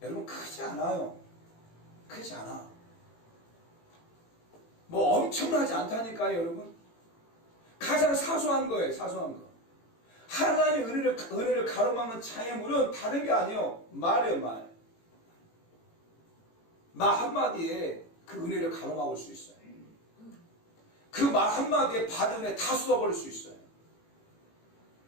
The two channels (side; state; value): right; late; 18 ms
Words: 여러분 크지 않아요. 크지 않아. 뭐 엄청나지 않다니까요, 여러분. 가장 사소한 거예요, 사소한 거. 하나님의 은혜를 가로막는 장애물은 다른 게 아니에요. 말이에요, 말. 말 한마디에 그 은혜를 가로막을 수 있어요. 그 말 한마디에 받은 은혜 다 쏟아버릴 수 있어요.